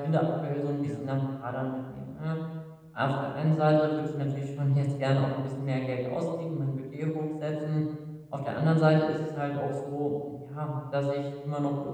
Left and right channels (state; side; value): identical; both; correlation 1.00